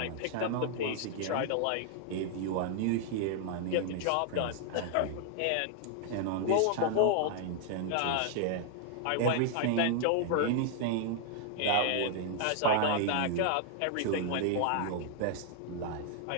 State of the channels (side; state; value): both; different; correlation 0.00